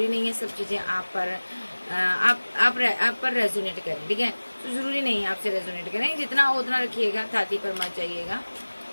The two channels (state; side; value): inverted; both; correlation -1.00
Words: नहीं है सब चीज़ें आप पर रेजोनेट करें, ठीक है? तो ज़रूरी नहीं है आपसे रेजोनेट करें, जितना हो उतना रखिएगा, छाती पर मत जाइएगा,